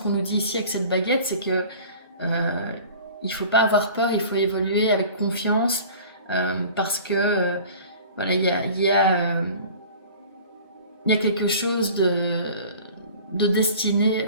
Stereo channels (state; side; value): inverted; both; correlation -0.43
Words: nous dit ici avec cette baguette, c'est que il faut pas avoir peur, il faut évoluer avec confiance parce que voilà, il y a quelque chose de destiné